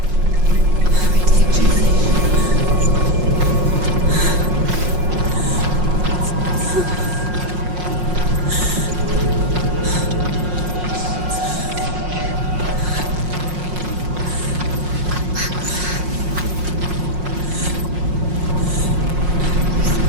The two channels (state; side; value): late; left; 5.5 ms